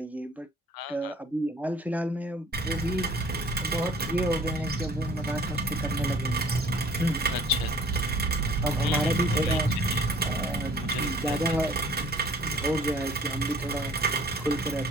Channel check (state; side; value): normal; both; correlation 0.53